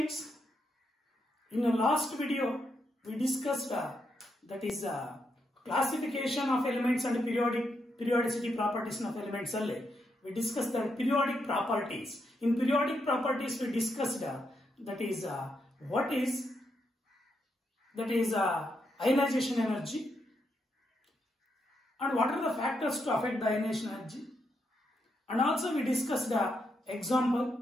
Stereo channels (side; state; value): both; normal; correlation 0.81